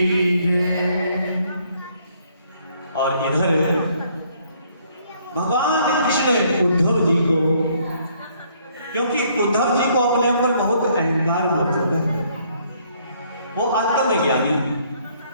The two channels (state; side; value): inverted; both; correlation -0.65